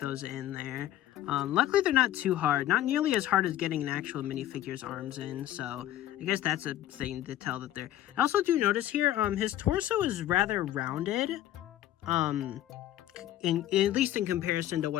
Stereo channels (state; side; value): quieter; right; 13.1 dB